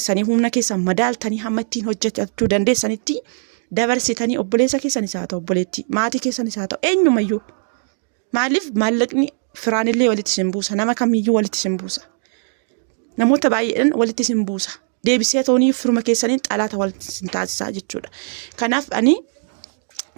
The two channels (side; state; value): left; silent; digital silence